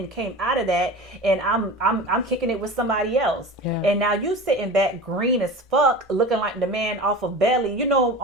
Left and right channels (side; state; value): both; normal; correlation 0.33